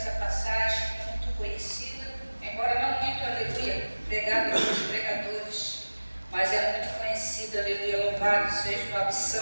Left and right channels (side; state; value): both; inverted; correlation -1.00